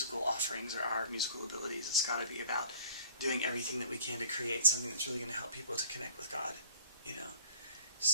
offerings or our musical abilities. It's got to be about doing everything that we can to create something that's really going to help people to connect with God, you know.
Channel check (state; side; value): inverted; both; correlation -0.51